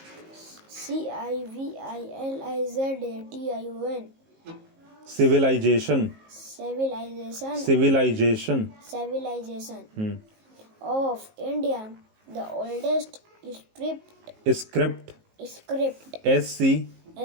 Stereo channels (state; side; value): late; left; 19 ms